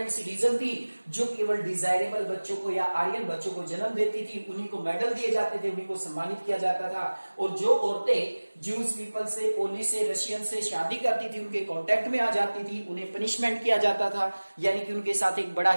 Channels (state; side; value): inverted; both; correlation -1.00